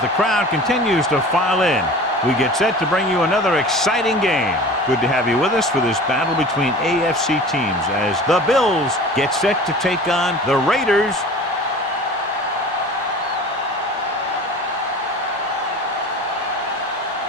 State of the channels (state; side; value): normal; both; correlation 0.39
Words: the crowd continues to file in, we get set to bring you another exciting game. Good to have you with us for this battle between AFC teams as the Bills get set to take on the Raiders.